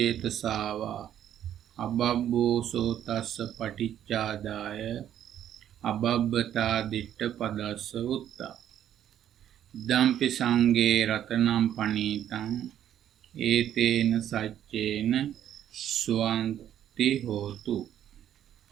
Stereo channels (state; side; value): quieter; left; 10.7 dB